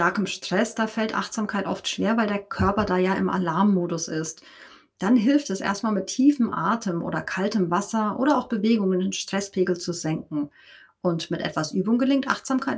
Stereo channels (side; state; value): both; identical; correlation 1.00